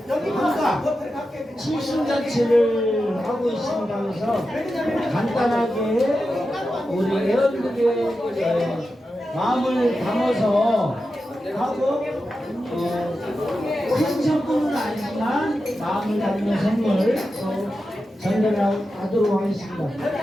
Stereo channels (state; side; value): normal; both; correlation 0.90